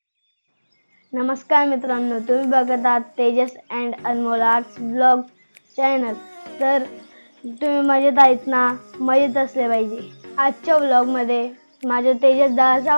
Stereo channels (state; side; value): inverted; both; correlation -1.00